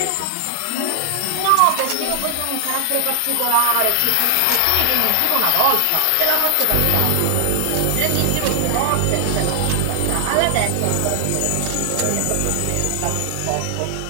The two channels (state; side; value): different; both; correlation 0.00